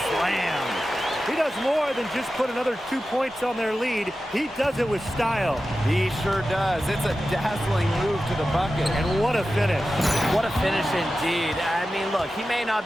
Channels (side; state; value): both; normal; correlation 0.93